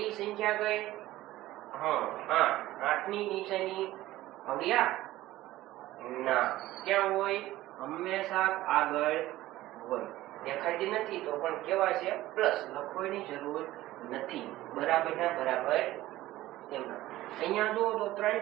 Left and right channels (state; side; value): quieter; left; 16.1 dB